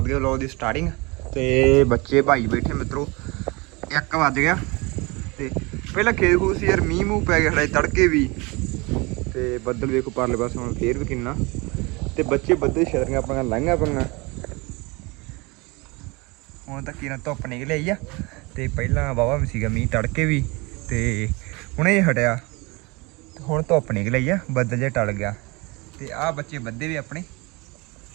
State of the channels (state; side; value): quieter; left; 25.9 dB